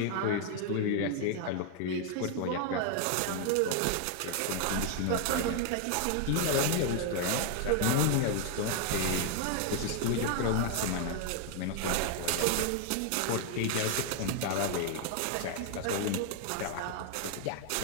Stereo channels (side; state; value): both; different; correlation 0.00